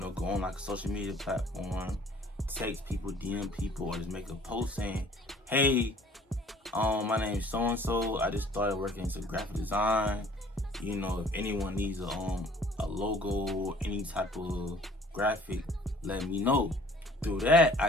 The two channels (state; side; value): normal; both; correlation 0.53